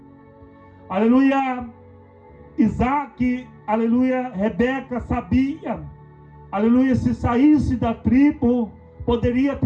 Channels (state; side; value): identical; both; correlation 1.00